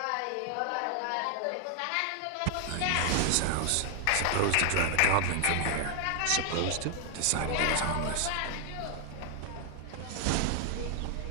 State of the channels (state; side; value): different; both; correlation 0.00